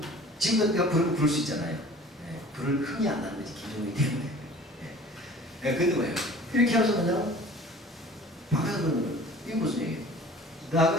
지금도 내가 부를 수 있잖아요. 네, 불을 흥이 안 나는 거지, 김정일이 때문에. 네, 근데 뭐예요? 이렇게 하면서 그냥 바꿔서 그러는 거예요. 이게 무슨 얘기예요?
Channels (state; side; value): normal; both; correlation 0.46